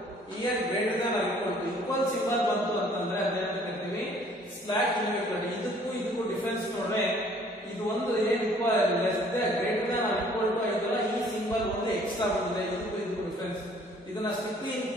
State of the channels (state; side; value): normal; both; correlation 0.57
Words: here greater than or equal to equal symbol ಬಂತು ಅಂತಂದ್ರೆ ಅದೇನಂತ ಕರಿತೀವಿ ಸ್ಲಾಕ್ ಇನ್ಇಕ್ವಾಲಿಟಿ. ಇದಕ್ಕೂ ಡಿಫರೆನ್ಸ್ ನೋಡ್ರೆ ಇದು ಒಂದು ಏನು less than greater than or equal to ಐತಲ್ಲ, ಈ ಸಿಂಬಲ್ ಒಂದು ಎಕ್ಸ್ಟ್ರಾ ಬಂದಿದೆ. ಇದಕ್ಕೂ ಡಿಫರೆನ್ಸ್. ಇದನ್ನ ಸ್ಟ್ರಿಕ್ಟ್ಲಿ